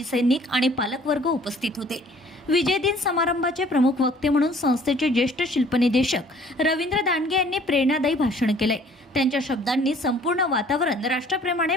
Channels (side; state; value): both; normal; correlation 0.55